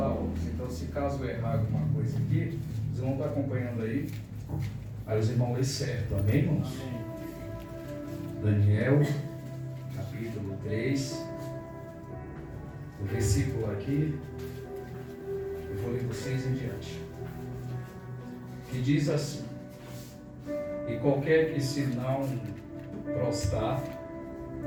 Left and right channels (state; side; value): identical; both; correlation 1.00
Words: óculos. Então, se caso eu errar alguma coisa aqui, vocês vão estar acompanhando aí. Aí os irmãos lêem certo, amém, irmãos? Amém. Daniel, capítulo 3, o versículo aqui, eu vou ler do 6 em diante, que diz assim: e qualquer que se não prostrar